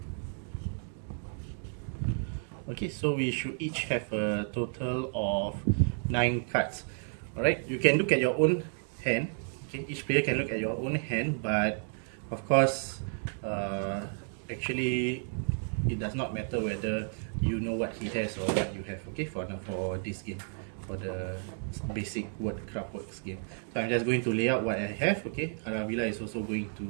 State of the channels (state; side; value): silent; left; 57 dB below the other